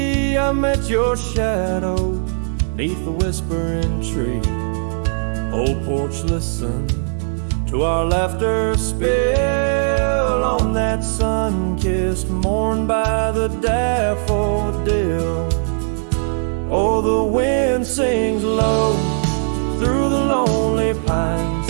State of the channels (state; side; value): silent; left; digital silence